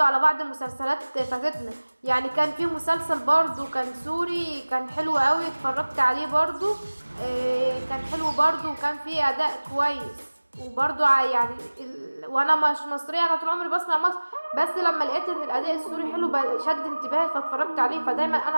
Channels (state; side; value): inverted; both; correlation -1.00